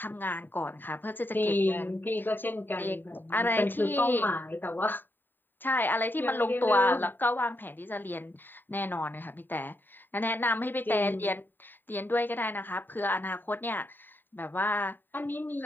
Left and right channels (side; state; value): right; late; 0.092 ms